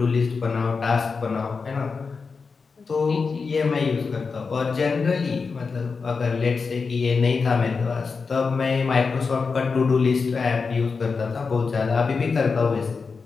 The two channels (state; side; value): quieter; right; 4.9 dB